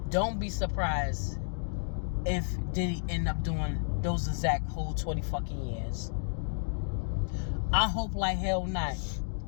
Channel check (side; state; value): right; silent; digital silence